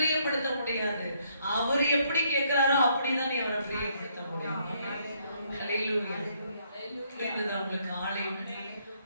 முடியாது. அவர் எப்படி கேட்கிறாரோ அப்படிதான் நீ அவரை பிரியப்படுத்த முடியும். உங்களுக்கு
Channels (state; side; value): inverted; both; correlation -0.70